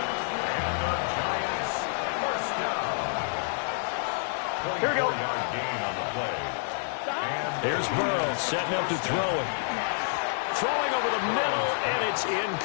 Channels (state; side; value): silent; right; digital silence